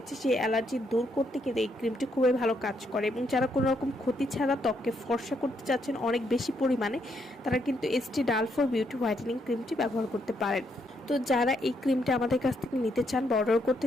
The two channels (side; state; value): both; normal; correlation 0.76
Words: সেই অ্যালার্জি দূর করতে কিন্তু এই ক্রিমটি খুবই ভালো কাজ করে। এবং যারা কোনো রকম ক্ষতি ছাড়া ত্বককে ফর্সা করতে চাচ্ছেন অনেক বেশি পরিমাণে, তারা কিন্তু এসটি ডালফোর বিউটি হোয়াইটেনিং ক্রিমটি ব্যবহার করতে পারেন। তো যারা এই ক্রিমটা আমাদের কাছ থেকে নিতে চান বা অর্ডার